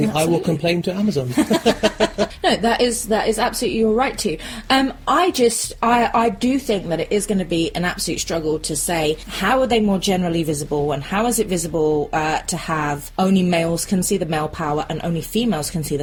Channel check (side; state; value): both; identical; correlation 1.00